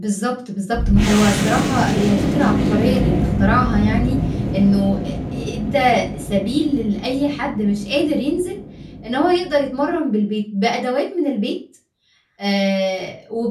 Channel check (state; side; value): identical; both; correlation 1.00